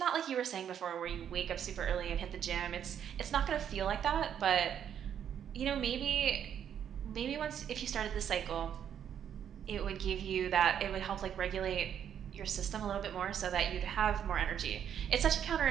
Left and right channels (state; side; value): quieter; left; 9.0 dB